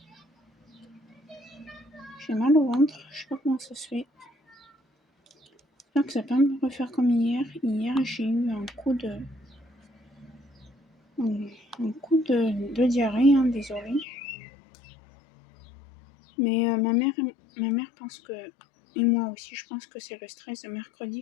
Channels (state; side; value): drops out; right; at 14.1 s